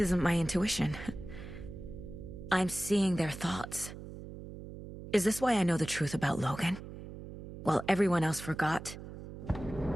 my intuition. I'm seeing their thoughts. Is this why I know the truth about Logan? While everyone else forgot?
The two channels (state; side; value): noise; right; hum, 12 dB below the sound